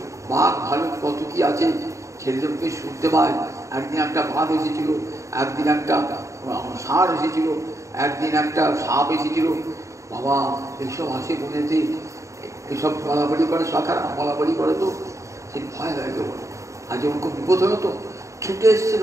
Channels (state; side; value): late; left; 0.15 ms